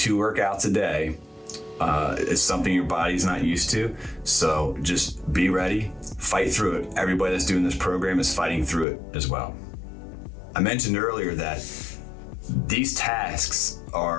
workouts a day is something your body's not used to. So just be ready, fight through it. Everybody that's doing this program is fighting through it as well. I mentioned earlier that these tasks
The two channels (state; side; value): drops out; right; at 8.8 s